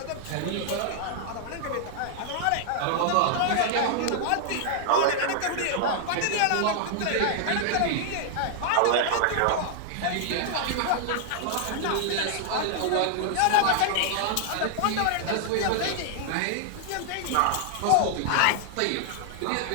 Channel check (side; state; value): both; different; correlation 0.00